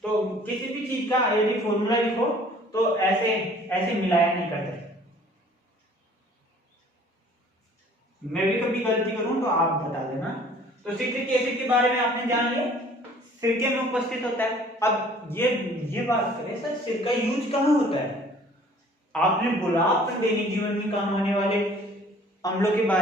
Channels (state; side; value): normal; both; correlation 0.53